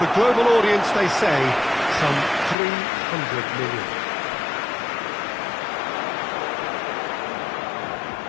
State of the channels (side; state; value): right; drops out; at 2.6 s